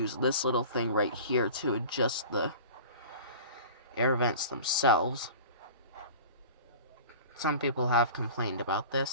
this little thing right here to adjust the air vents themselves. Some people have complained about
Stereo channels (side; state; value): both; inverted; correlation -0.39